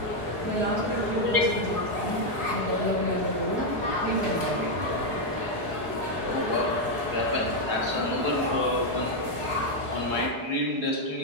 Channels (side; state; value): left; late; 4.7 ms